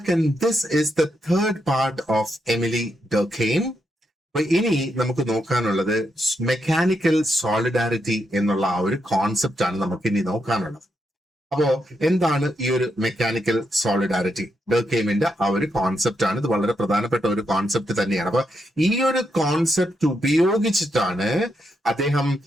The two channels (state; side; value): normal; both; correlation 0.81